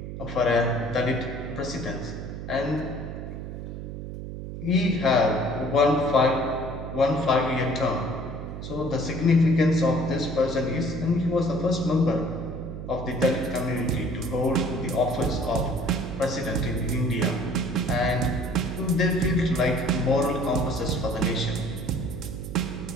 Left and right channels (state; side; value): noise; right; hum, 8 dB below the sound